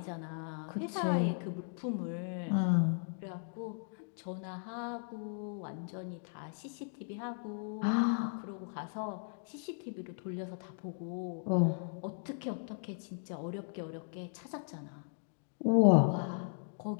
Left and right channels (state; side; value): silent; right; digital silence